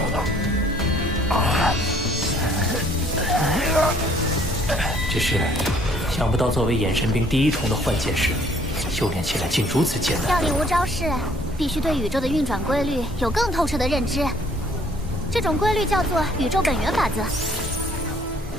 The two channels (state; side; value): normal; both; correlation 0.61